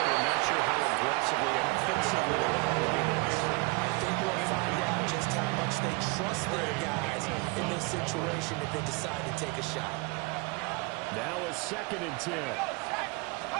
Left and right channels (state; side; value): quieter; left; 27.1 dB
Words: not sure how aggressively and offensively they're playing this. I think we'll find out just how much they trust their guys in this situation if they decide to take a shot. Now a 2nd and 10.